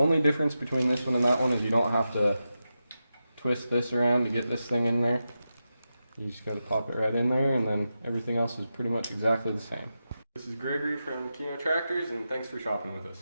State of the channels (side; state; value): both; inverted; correlation -0.90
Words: difference between this one and that one is you don't have to twist this around to get this thing in there. You just gotta pop it right in there, and then everything else is pretty much exactly the same. This is Gregory from Kino Tractors, and thanks for shopping with us.